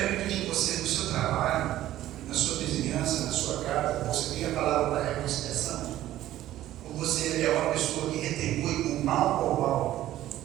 de você, no seu trabalho, na sua vizinhança, na sua casa, você tem a palavra da reconciliação? Ou você é uma pessoa que retribui com mal por mal?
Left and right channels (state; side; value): quieter; left; 13.8 dB